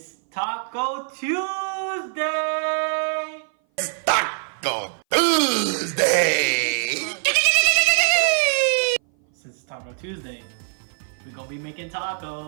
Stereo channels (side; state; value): left; silent; 58 dB below the other